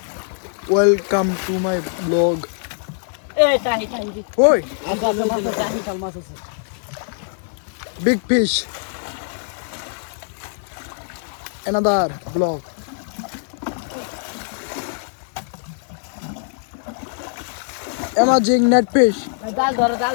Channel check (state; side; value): silent; right; digital silence